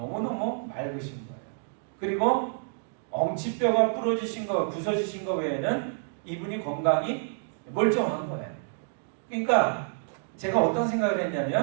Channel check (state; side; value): silent; left; digital silence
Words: 맑으신 거예요. 그리고 엉치뼈가 부러지신 거, 부서지신 거 외에는 이분이 건강이 멀쩡한 거예요. 그러니까 제가 어떤 생각을